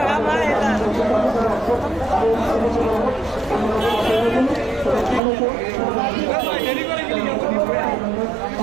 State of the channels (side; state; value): left; drops out; at 5.2 s